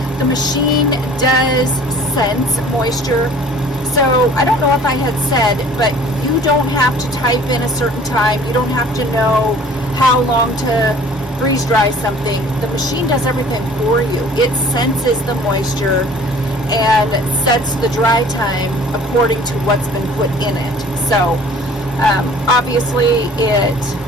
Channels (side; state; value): both; normal; correlation 0.49